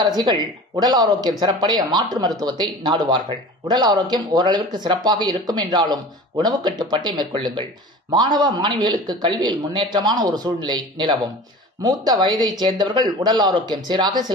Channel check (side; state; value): both; normal; correlation 0.38